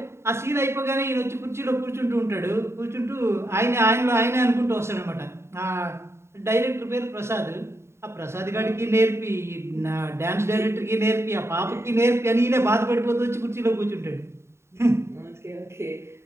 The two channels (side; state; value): left; late; 0.13 ms